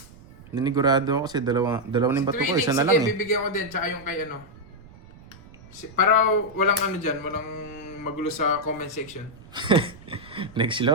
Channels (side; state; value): right; noise; rumble, 21 dB below the sound